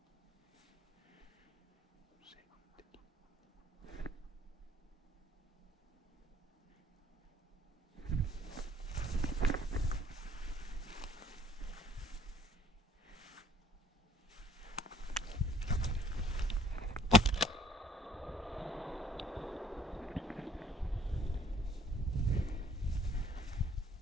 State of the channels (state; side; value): normal; both; correlation 0.60